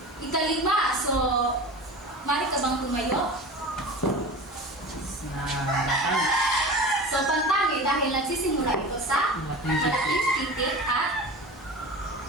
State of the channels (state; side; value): normal; both; correlation 0.33